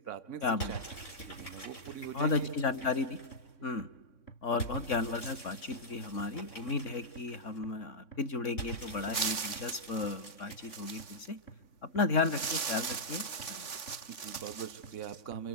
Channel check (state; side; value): late; right; 3.4 ms